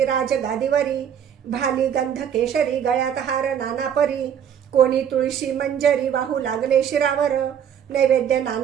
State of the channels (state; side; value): quieter; left; 8.7 dB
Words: राज गादीवरी भाली गंध केशरी गळ्यात हार नाना परी कोणी तुळशी मंजरी वाहू लागले शिरावर नैवेद्य